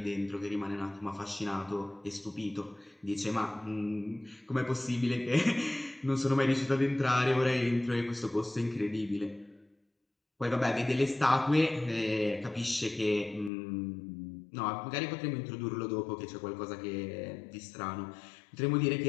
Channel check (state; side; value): drops out; right; at 13.5 s